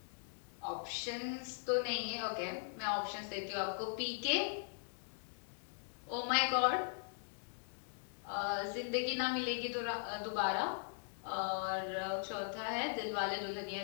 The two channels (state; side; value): silent; right; digital silence